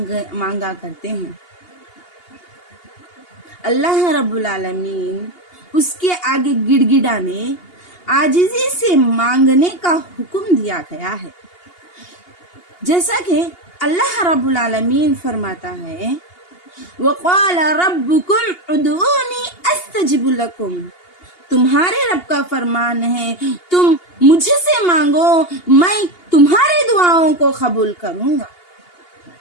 करते हैं। अल्लाह रब्बुल आलमीन उसके आगे गिड़गिड़ाने, आजिज़ी से मांगने का हुक्म दिया गया है। जैसा कि अल्लाह रब्बुल आलमीन फरमाता है, वक़ाल रब्बुकुम उदूनी अस्तजिब लकुम। तुम्हारे रब का फरमान है, तुम मुझसे मांगो, मैं तुम्हारी दुआओं को कबूल करूंगा।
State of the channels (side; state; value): right; late; 2.8 ms